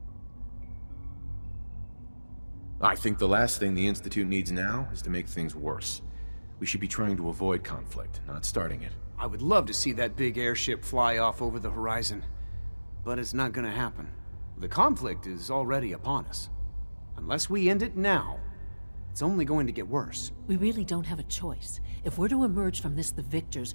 I think the last thing the Institute needs now is to make things worse. We should be trying to avoid conflict, not starting it. I would love to see that big airship fly off over the horizon, but it's not gonna happen. The conflict is already upon us. Unless we end it now, it's only going to get worse. We really don't have a choice. If we're to emerge from this the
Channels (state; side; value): inverted; both; correlation -1.00